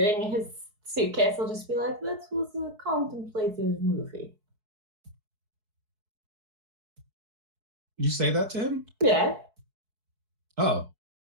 his suitcase, I'll just be like, that was a contemplative movie. You say that to him? Yeah. Oh.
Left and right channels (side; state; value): left; late; 4.7 ms